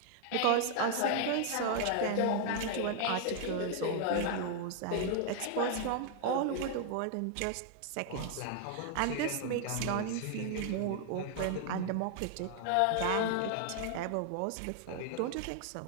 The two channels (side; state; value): both; different; correlation 0.00